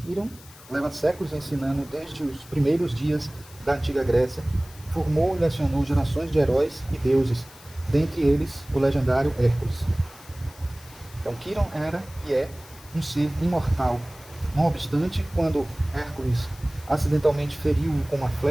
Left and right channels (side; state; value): left; noise; hiss, 21 dB below the sound